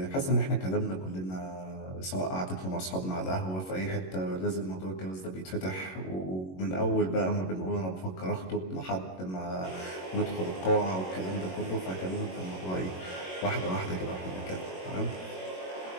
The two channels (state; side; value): late; right; 22 ms